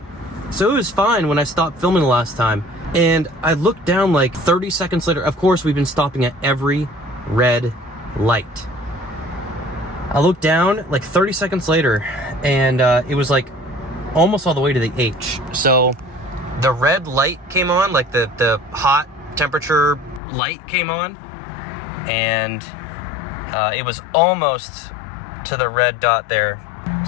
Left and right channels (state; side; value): drops out; right; at 20.2 s